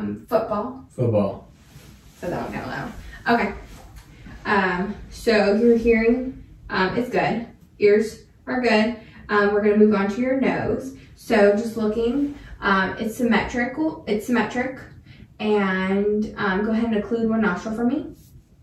Football. Football. So that one kind of loud. Okay. So your hearing is good. Ears are good. We're going to move on to your nose. So just looking, it's symmetrical. It's symmetric. And go ahead and occlude one nostril for me.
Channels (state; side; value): identical; both; correlation 1.00